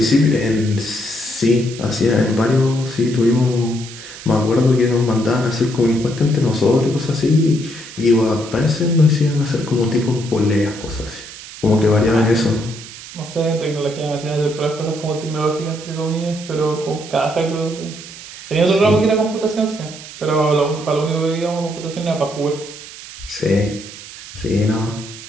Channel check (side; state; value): right; noise; hiss, 15 dB below the sound